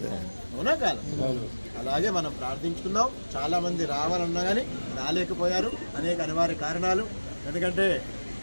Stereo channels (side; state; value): both; inverted; correlation -1.00